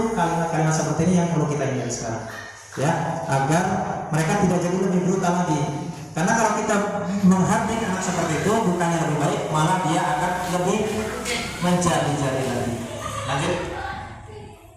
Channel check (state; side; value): identical; both; correlation 1.00